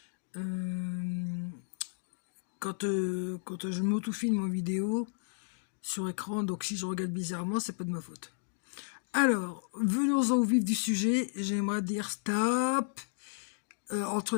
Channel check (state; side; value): silent; right; digital silence